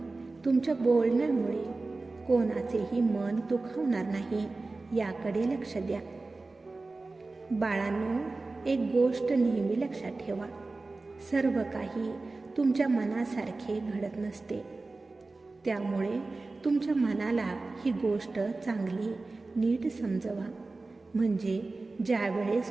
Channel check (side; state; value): left; quieter; 3.4 dB